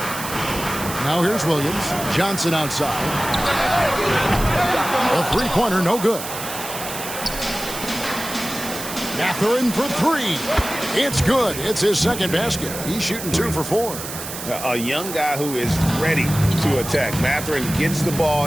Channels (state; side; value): noise; right; hiss, 8 dB below the sound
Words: Now here's Williams. Johnson outside. A three-pointer, no good. Mathurin for 3. It's good. It's his second basket. He's shooting 2 for 4. A young guy who is ready to attack. Mathurin gets the